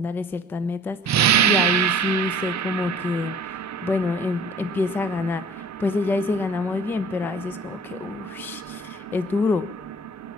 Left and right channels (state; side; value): normal; both; correlation 0.49